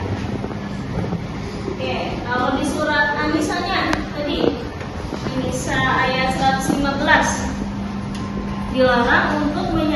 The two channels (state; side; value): identical; both; correlation 1.00